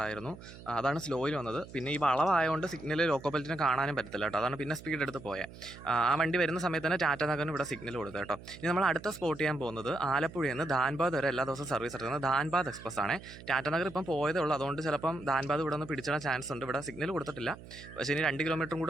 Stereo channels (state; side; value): noise; right; hum, 16 dB below the sound